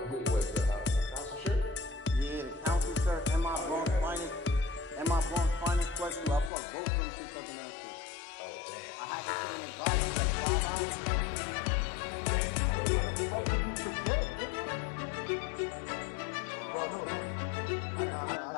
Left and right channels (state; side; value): drops out; right; at 6.5 s